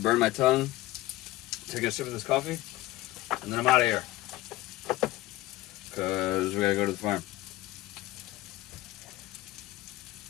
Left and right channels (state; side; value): quieter; right; 17.2 dB